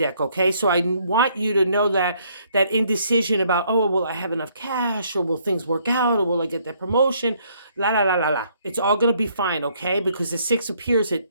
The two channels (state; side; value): inverted; both; correlation -0.67